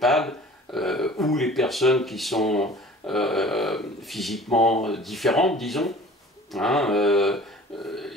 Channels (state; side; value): normal; both; correlation 0.46